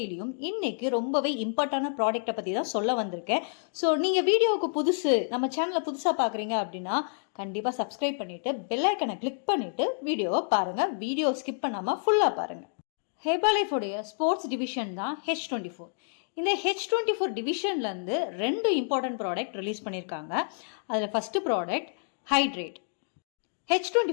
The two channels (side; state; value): right; silent; digital silence